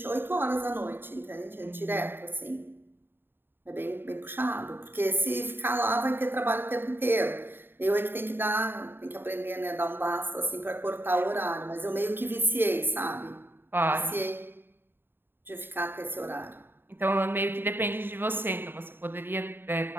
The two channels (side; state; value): left; late; 0.10 ms